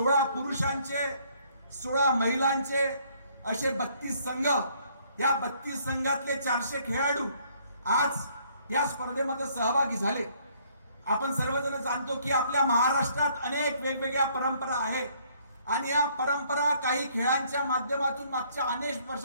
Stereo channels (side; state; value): both; inverted; correlation -0.64